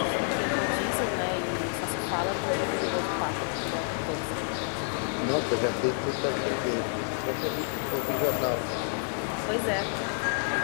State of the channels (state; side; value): silent; right; 59 dB below the other